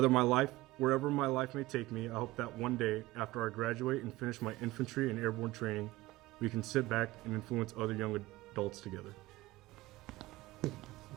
my life may take me, I hope that one day, after I graduate and finish my infantry and airborne training, we can sit back and influence other young adults together.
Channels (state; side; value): quieter; left; 18.7 dB